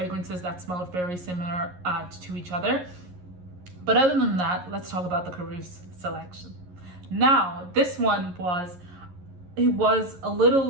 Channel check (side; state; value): left; late; 11 ms